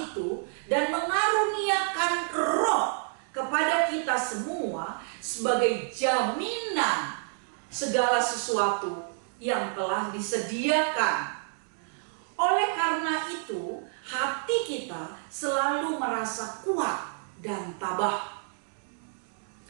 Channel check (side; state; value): left; silent; 59 dB below the other